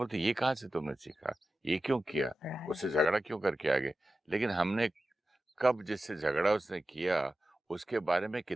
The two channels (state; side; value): normal; both; correlation 0.93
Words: ये कहाँ से तुमने सीखा, ये क्यों किया, उससे झगड़ा क्यों करके आ गए। लेकिन हमने कब जिससे झगड़ा उसने किया उसके बारे में